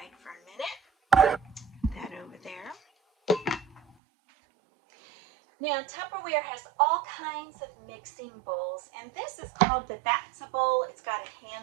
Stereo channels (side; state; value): left; drops out; at 4.0 s